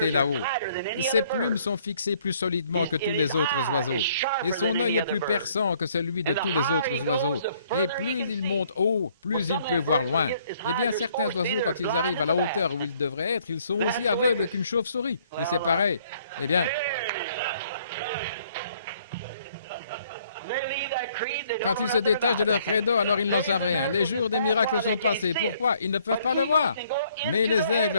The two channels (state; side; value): inverted; both; correlation -0.63